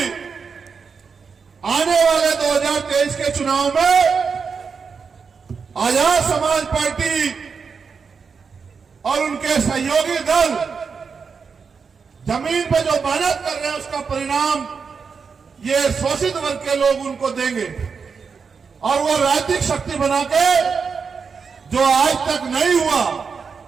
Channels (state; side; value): quieter; left; 5.6 dB